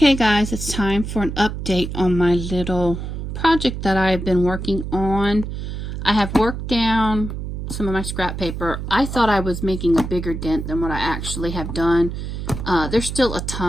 guys, it's time for an update on my little project that I've been working on. I have worked down some of my scrap paper. I thought I was making a bigger dent than what I actually have done. There's still a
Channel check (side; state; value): right; noise; hum, 6 dB below the sound